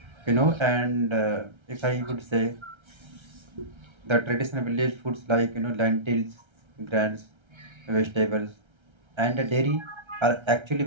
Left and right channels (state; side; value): late; left; 1.3 ms